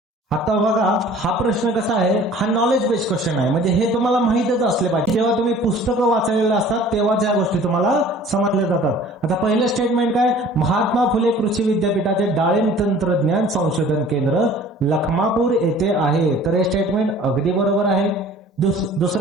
आता बघा हा प्रश्न कसा आहे? हा नॉलेज बेस्ड क्वेश्चन आहे. म्हणजे हे तुम्हाला माहितच असले पाहिजे. जेव्हा तुम्ही पुस्तकं वाचलेलं असतात तेव्हाच या गोष्टी तुम्हाला समजल्या जातात. आता पहिलं स्टेटमेंट काय? महात्मा फुले कृषी विद्यापीठाचे डाळिंब तंत्रज्ञान संशोधन केंद्र लखमापूर येथे आहे. तर हे स्टेटमेंट अगदी बरोबर आहे.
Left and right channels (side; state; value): both; normal; correlation 0.48